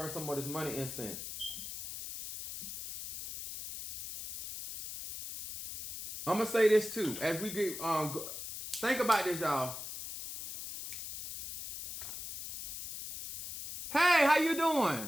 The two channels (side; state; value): left; noise; hiss, 8 dB below the sound